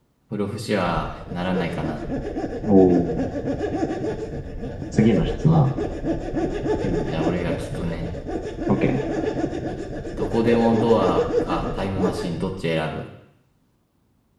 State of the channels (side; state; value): both; identical; correlation 1.00